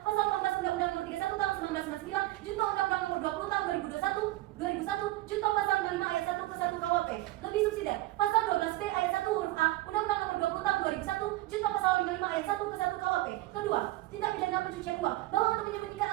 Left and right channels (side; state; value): left; quieter; 17.7 dB